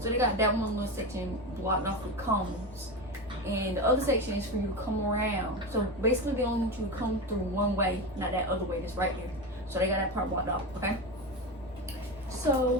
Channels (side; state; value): both; normal; correlation 0.20